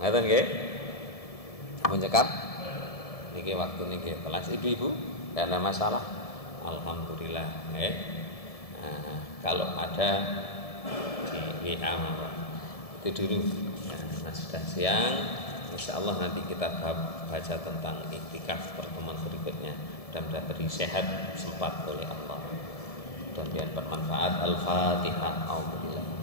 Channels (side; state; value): right; late; 1.7 ms